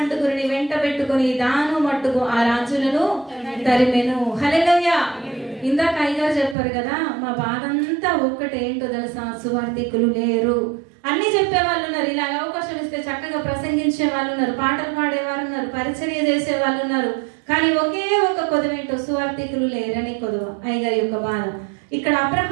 వెంట పెట్టుకుని దాను మట్టుకు ఆ రాజులను తరిమెను. హల్లెలూయా. ఇందాక అయ్యగారు చెప్పారు కదా, మా బాధ అంతా ఒక్కటేంటో తెలుసా, సువార్థికులు లేరు. అన్ని చెప్పే వాళ్ళు ఉన్నారు, ఇలాగ అవకాశం ఇస్తే చక్కగా ప్రసంగించే వాళ్ళు ఉన్నారు, పాటలు పాడేవారు ఉన్నారు, పరిచర్య చేసే వాళ్ళు ఉన్నారు. కానీ ఒకే ఒక కొదవేంటో, సువార్థికులు లేరని కొదవ అయ్యగారి యొక్క బాధ. ఇక్కడ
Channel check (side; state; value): left; drops out; at 6.6 s